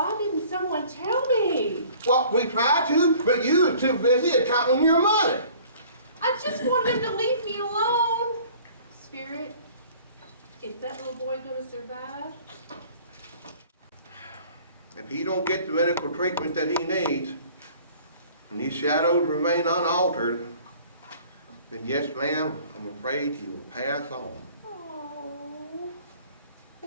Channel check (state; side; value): inverted; both; correlation -0.51